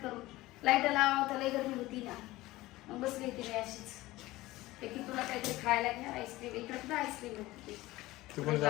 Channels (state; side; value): quieter; right; 18.4 dB